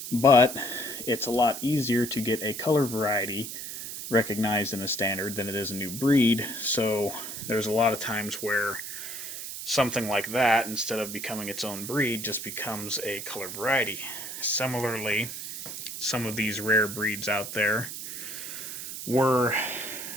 But it's a lot easier to get a color variety recognized in a standard than it is a new breed, so there's a lot of times where something like that, instead of becoming its own breed, just becomes a color variety. Similarly, some of these rare breeds out there were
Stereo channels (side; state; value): right; noise; hiss, 8 dB below the sound